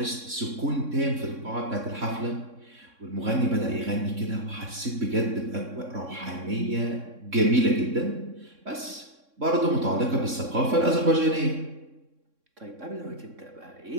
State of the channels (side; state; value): left; late; 3.6 ms